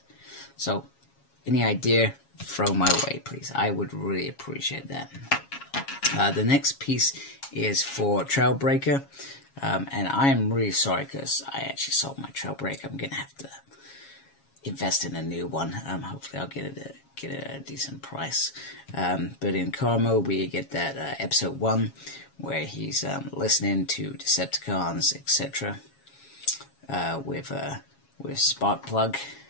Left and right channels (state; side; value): late; right; 7.3 ms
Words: So, any idea, throw my way, please. I would really appreciate that. The next piece is for Trailbreaker. And I am really sorry because I actually sold my Trailbreaker. I'm going to have to invest in a new one. Hopefully I'll get it at a decent price. But in Carmo, we get that episode 1 where he's listening to Decepticons, etc. With Sparkplug.